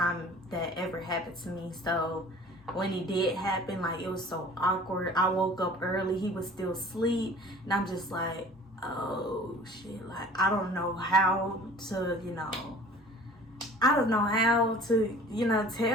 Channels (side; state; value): both; normal; correlation 0.47